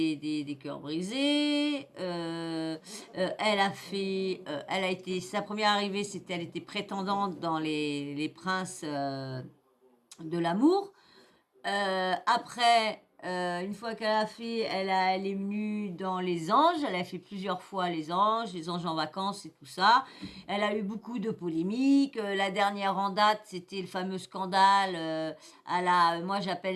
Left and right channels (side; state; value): both; identical; correlation 1.00